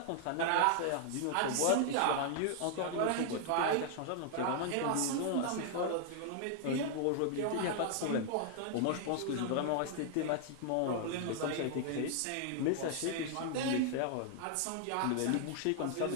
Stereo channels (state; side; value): different; both; correlation 0.00